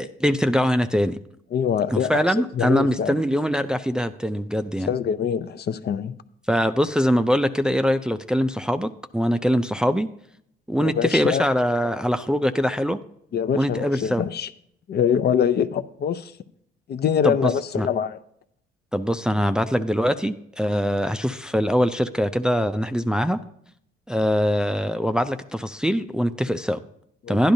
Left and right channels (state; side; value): normal; both; correlation 0.78